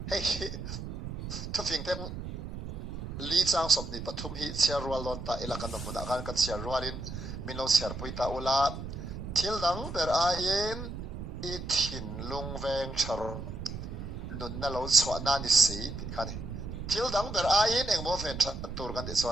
hei thu fing tem li chang sop ni pathum hi chia rual lon ta ilakan no mun akan ka chia rualin minlo siar puita ula thil dang ber ain I thinlung veng thar nun na lo chwa na ni si khani thil dang ber ain engmo fen tha tur kan ti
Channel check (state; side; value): noise; right; rumble, 8 dB below the sound